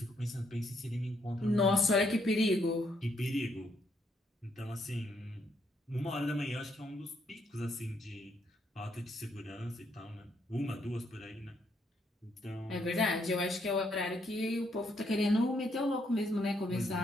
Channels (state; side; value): normal; both; correlation 0.74